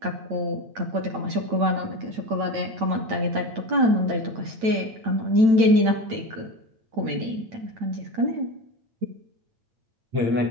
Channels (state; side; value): late; left; 9.0 ms